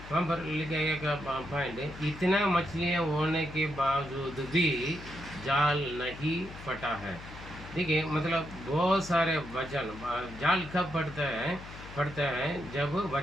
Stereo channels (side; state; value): left; noise; hum, 14 dB below the sound